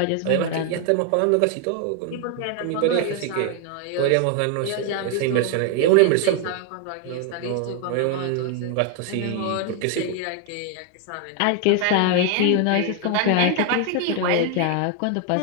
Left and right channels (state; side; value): different; both; correlation 0.01